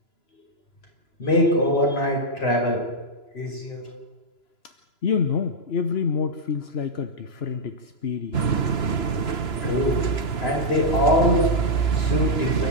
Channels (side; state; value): right; late; 2.9 ms